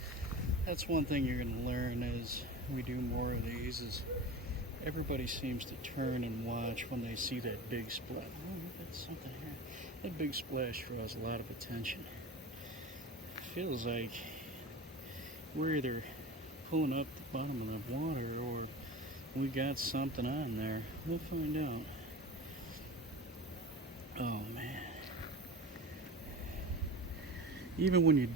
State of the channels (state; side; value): normal; both; correlation 0.32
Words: That's one thing you're going to learn as we do more of these, is everybody seems to turn and watch when they see that big splash. Oh, look at something here. That big splash draws a lot of attention. It feels like we're either pulling up the bottom of the water or we got something on there. We'll find out. Oh, man. Even when you